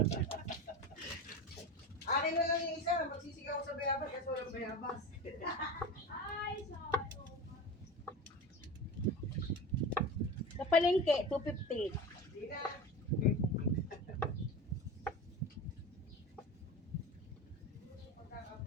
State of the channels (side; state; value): both; normal; correlation 0.28